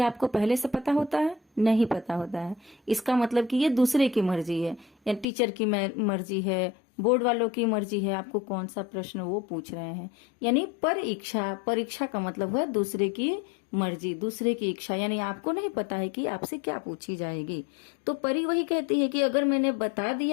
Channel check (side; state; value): right; drops out; at 5.2 s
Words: आपको पहले से पता होता है? नहीं पता होता है। इसका मतलब कि ये दूसरे की मर्जी है, या टीचर की मर्जी है, बोर्ड वालों की मर्जी है, आपको कौन सा प्रश्न वो पूछ रहे हैं। यानी परीक्षा, परीक्षा का मतलब है दूसरे की मर्जी, दूसरे की इच्छा, यानी आपको नहीं पता है कि आपसे क्या पूछी जाएगी। तो परी वही कहती है कि अगर मैंने बता